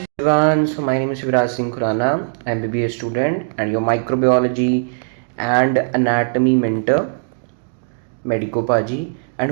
So my name is Viraj Singh Khurana. I'm BBA student and your microbiology and anatomy mentor, Medico Paji. And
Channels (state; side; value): silent; left; digital silence